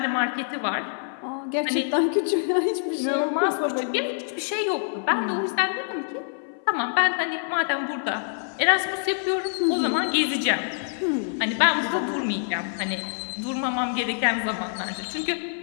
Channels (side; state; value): right; silent; 61 dB below the other